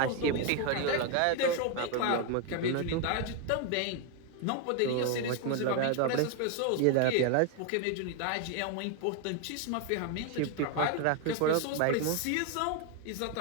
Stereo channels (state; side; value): different; both; correlation 0.01